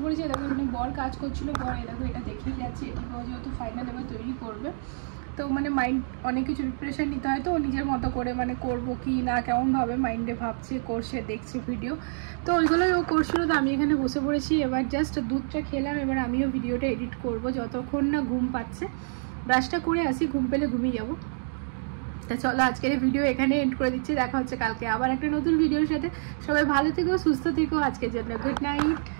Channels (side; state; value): left; silent; digital silence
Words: পড়েছি। এরকম এখানে বর কাজ করছিল, বর এরকম এটা দেখেই যাচ্ছে, এটিও যেহেতু ফাইনাল এবার তৈরি করবে, তো মানে মাইন্ড অনেক কিছু প্রিপারেশন নিতে হয়, তো ও নিজের মতো করে মানে করবো কি না কেমনভাবে মাইন্ডে ভাবছে, করছে, দেখছে ভিডিও, তো ওইগুলোই ও করছিল। তো আমি এখানে বসে পড়েছি, এবার জাস্ট দুধটা খেলাম, এবার আমিও ভিডিওটা এডিট করব যতক্ষণ না ঘুম পাচ্ছে। ব্রাশটা করে আসি, ঘুম পেলে ঘুমিয়ে যাবো। তা চলো আজকের এই ভিডিও এখানে এন্ড করে দিচ্ছি, দেখা হচ্ছে কালকে আবার একটা নতুন ভিডিওর সাথে। সবাই ভালো থেকো, সুস্থ থেকো, আজকের জন্য good night,